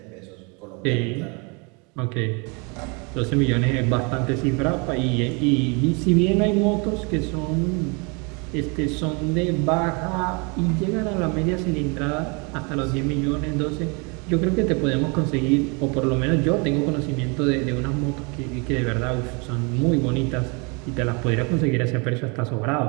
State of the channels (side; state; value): left; quieter; 31.6 dB